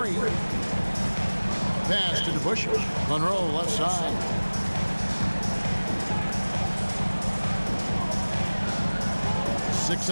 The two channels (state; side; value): inverted; both; correlation -1.00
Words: Pass to DeBusschere. Monroe left side. Six